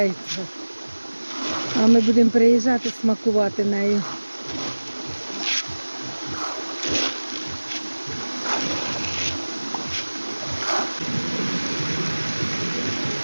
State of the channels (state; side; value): inverted; both; correlation -1.00